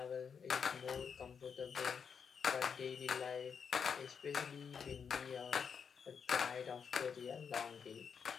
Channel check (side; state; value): right; quieter; 6.6 dB